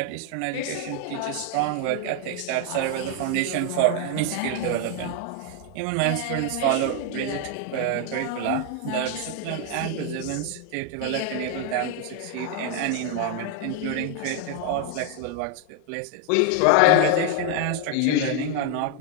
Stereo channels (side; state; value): both; different; correlation 0.00